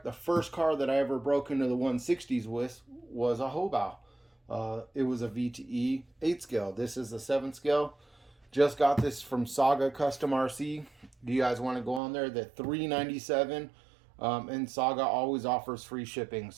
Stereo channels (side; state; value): left; drops out; at 12.0 s